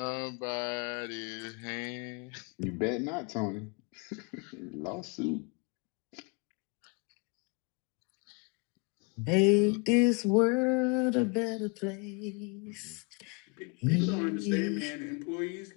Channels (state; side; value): quieter; right; 32.5 dB